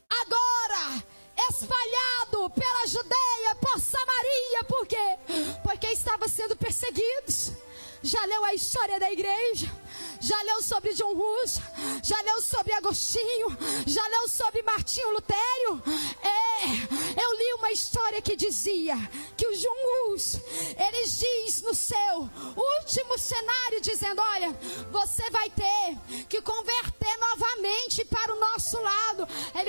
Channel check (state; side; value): inverted; both; correlation -1.00